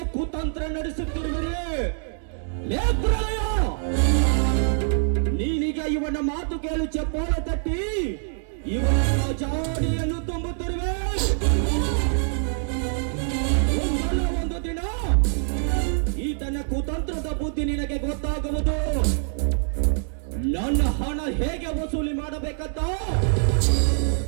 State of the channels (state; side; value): silent; left; digital silence